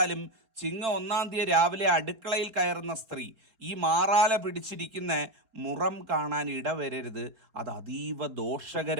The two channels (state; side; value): late; left; 4.1 ms